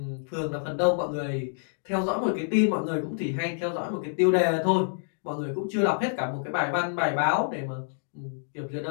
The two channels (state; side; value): silent; right; digital silence